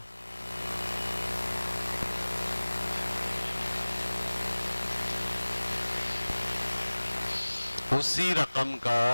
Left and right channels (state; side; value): inverted; both; correlation -1.00